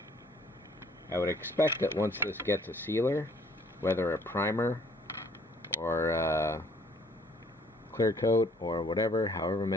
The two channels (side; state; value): both; normal; correlation 0.60